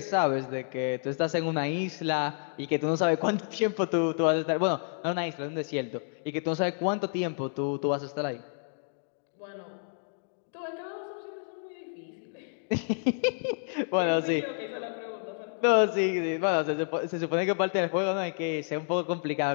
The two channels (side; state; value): right; silent; digital silence